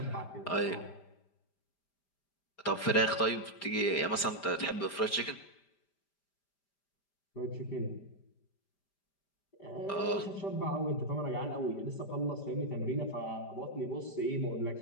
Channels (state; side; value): late; right; 5.0 ms